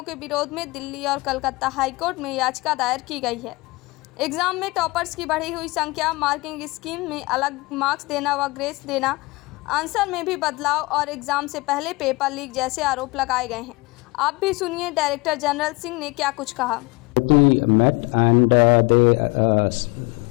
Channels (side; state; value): right; quieter; 24.0 dB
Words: के विरोध में दिल्ली और कलकत्ता हाईकोर्ट में याचिका दायर की गई है। एग्जाम में टॉपर्स की बढ़ी हुई संख्या, मार्किंग स्कीम में अलग मार्क्स देना व ग्रेस देना, आंसर में भी बदलाव और एग्जाम से पहले पेपर लीक जैसे आरोप लगाए गए हैं। आप भी सुनिए डायरेक्टर जनरल सिंह ने क्या कुछ कहा।